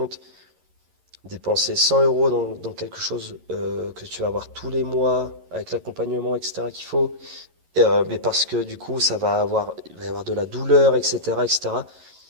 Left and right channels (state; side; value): late; left; 11 ms